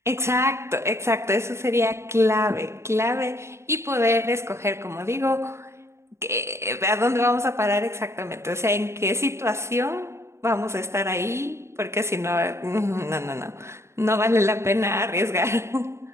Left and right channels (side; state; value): left; late; 0.13 ms